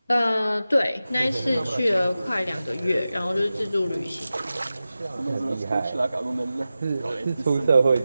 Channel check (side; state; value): both; inverted; correlation -0.94